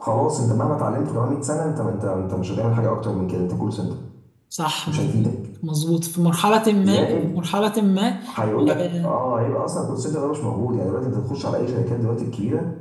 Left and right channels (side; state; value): both; identical; correlation 1.00